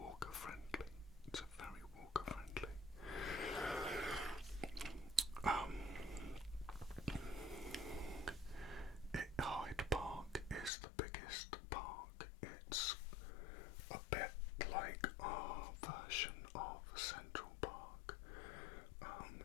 friendly. It's a very walker friendly. Hyde Park is the biggest park. It's a bit like our version of Central Park.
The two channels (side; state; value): right; drops out; at 10.7 s